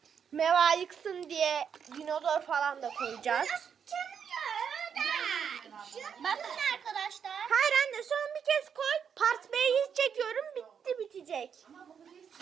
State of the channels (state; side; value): quieter; left; 7.3 dB